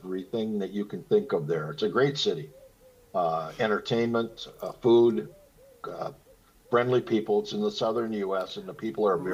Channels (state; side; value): identical; both; correlation 1.00